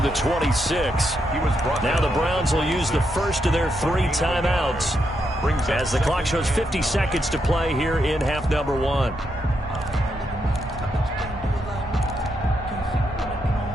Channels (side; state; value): both; normal; correlation 0.81